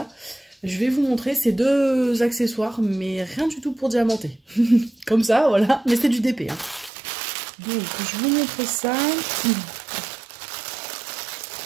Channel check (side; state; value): left; drops out; at 6.9 s